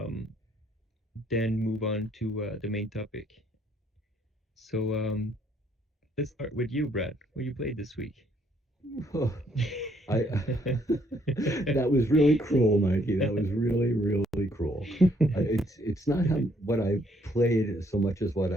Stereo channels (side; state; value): both; normal; correlation 0.68